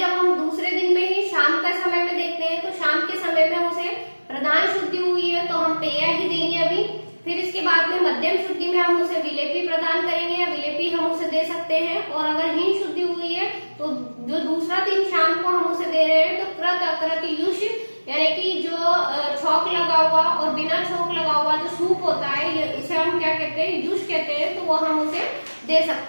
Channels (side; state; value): both; inverted; correlation -1.00